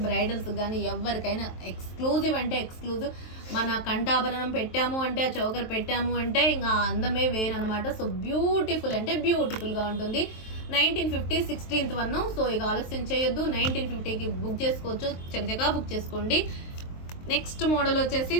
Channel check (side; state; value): right; late; 23 ms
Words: బ్రైడల్స్ కానీ ఎవరికైనా ఎక్స్క్లూజివ్ అంటే ఎక్స్క్లూజివ్. మన కంఠాభరణం పెట్టాము అంటే, ఆ చౌకర్ పెట్టాము అంటే ఇంకా అందమే వేరనమాట. సో బ్యూటిఫుల్ అంటే బ్యూటిఫుల్గా ఉంటుంది. 1950 16th 1. సో ఇక ఆలస్యం చేయొద్దు, 1950కి బుక్ చేసుకోవచ్చు, చకచకా బుక్ చేసుకోండి. నెక్స్ట్ మోడల్ వచ్చేసి